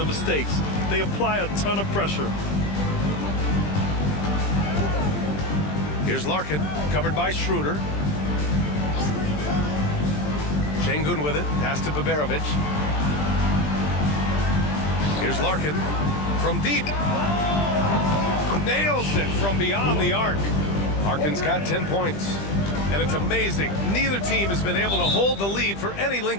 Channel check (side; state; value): right; late; 20 ms